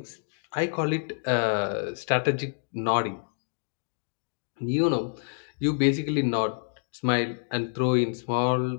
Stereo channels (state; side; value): silent; right; 59 dB below the other